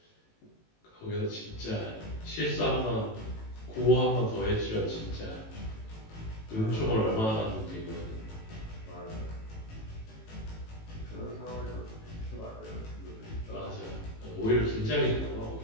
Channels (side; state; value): right; late; 18 ms